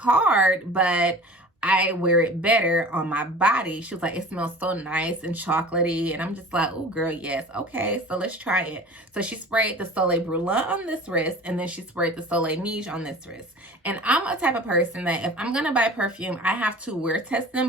but I wear it better on my body. She was like, it smells so nice and chocolatey. And I'm just like, oh girl, yes. Okay, so let's try it. So she sprayed the Soleil Blanc on this wrist, and then she sprayed the Soleil Neige on this wrist. And I'm a type of person that if I'm going to buy perfume, I have to wear test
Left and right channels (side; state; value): both; normal; correlation 0.41